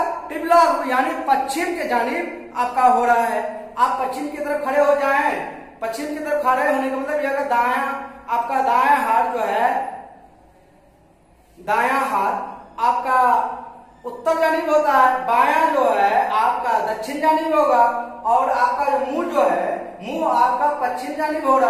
टिबला यानी पश्चिम के जानिब आपका हो रहा है। आप पश्चिम की तरफ खड़े हो जाएं। पश्चिम की तरफ खड़े होने का मतलब यह दायां, आपका दायां हाथ जो है, दायां हाथ आपका उत्तर जानिब होता है, बायां जो है आपका दक्षिण जानिब होगा और आपका जो मुंह जो है, मुंह आपका पश्चिम जानिब हो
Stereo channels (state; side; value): identical; both; correlation 1.00